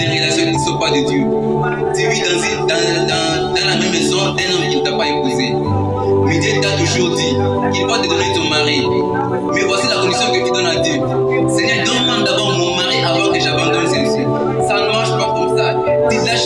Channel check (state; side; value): identical; both; correlation 1.00